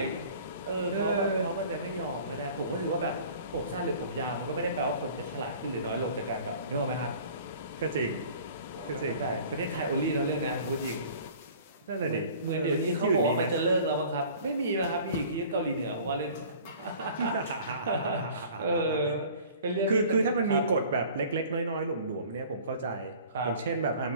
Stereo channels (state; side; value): inverted; both; correlation -0.47